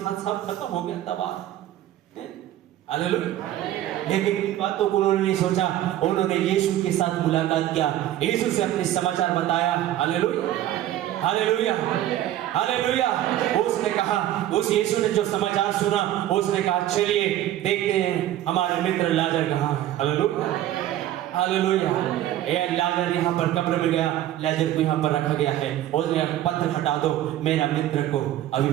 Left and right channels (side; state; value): left; quieter; 13.0 dB